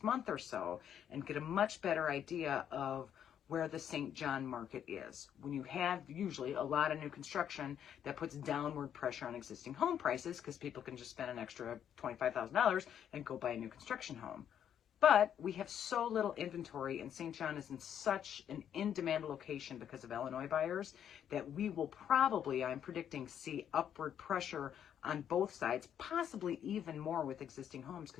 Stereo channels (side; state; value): right; quieter; 9.3 dB